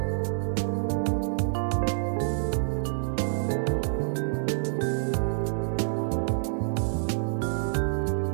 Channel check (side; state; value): left; silent; 58 dB below the other